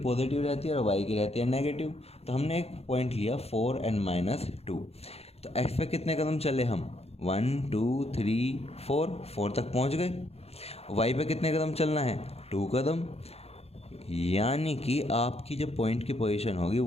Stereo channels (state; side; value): late; right; 0.30 ms